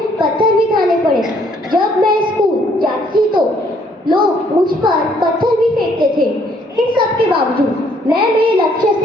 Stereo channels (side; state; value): both; normal; correlation 0.65